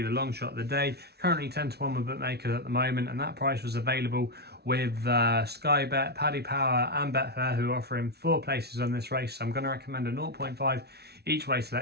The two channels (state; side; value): late; left; 0.48 ms